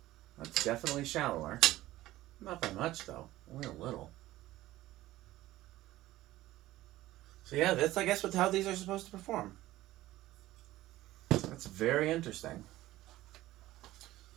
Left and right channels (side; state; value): left; quieter; 16.1 dB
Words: That's definitely shallower. Not by much, though. Only a little. So yeah, that's, I guess, how these are supposed to perform. That's very interesting.